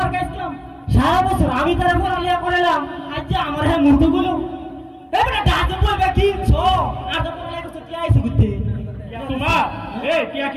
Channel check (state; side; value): identical; both; correlation 1.00